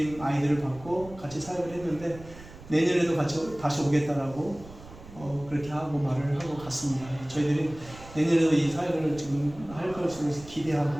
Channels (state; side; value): noise; right; rumble, 18 dB below the sound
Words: 아이들을 받고 같이 사역을 했는데 내년에도 같이 다시 오겠다라고 그렇게 하고 말을 하고 갔습니다. 저희들이 내년에도 이 사역을 지금 할 것을